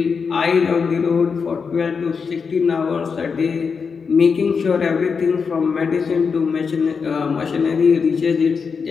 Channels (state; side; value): quieter; right; 5.6 dB